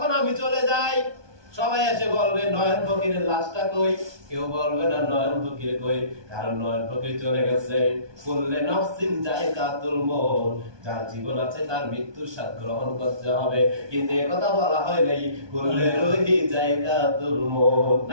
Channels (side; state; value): left; late; 1.2 ms